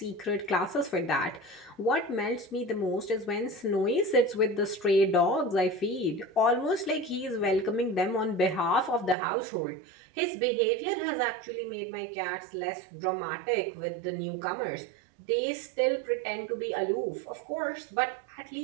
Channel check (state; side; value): drops out; left; at 9.2 s